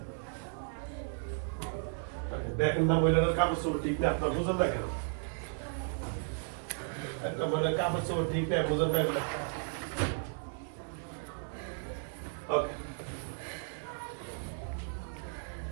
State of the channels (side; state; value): left; silent; 55 dB below the other